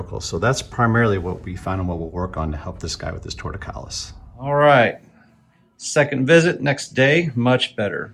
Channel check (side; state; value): both; identical; correlation 1.00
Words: So that's primarily what we found and what we'll work on to help this guy with his torticollis. All right. Second visit, next day, much better.